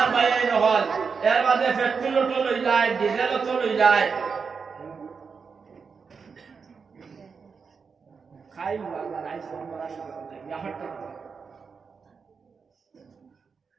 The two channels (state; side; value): quieter; left; 5.5 dB